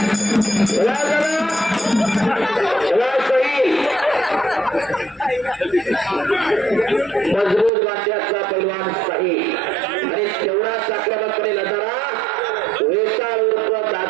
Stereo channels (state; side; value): drops out; left; at 7.7 s